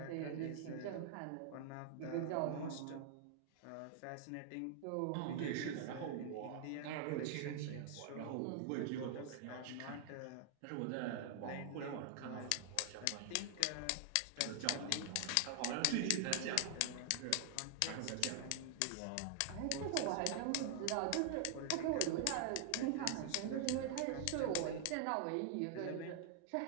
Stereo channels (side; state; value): both; different; correlation 0.00